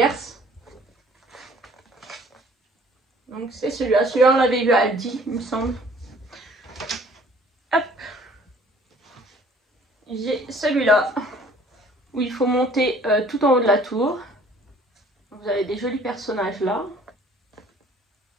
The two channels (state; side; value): normal; both; correlation 0.55